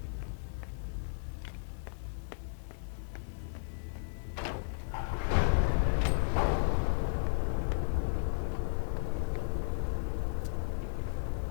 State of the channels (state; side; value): silent; right; digital silence